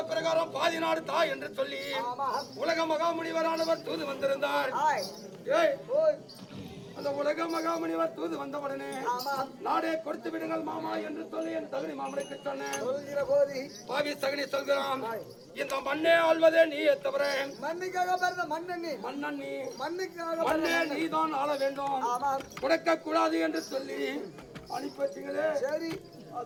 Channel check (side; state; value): both; identical; correlation 1.00